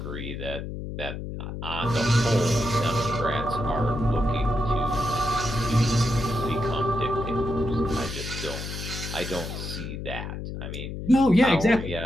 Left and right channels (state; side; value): noise; left; hum, 7 dB below the sound